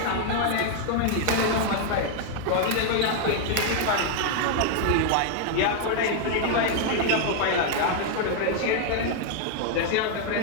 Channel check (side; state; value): both; different; correlation 0.00